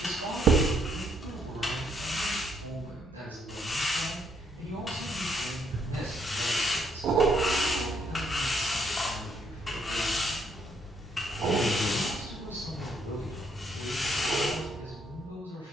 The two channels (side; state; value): both; normal; correlation 0.72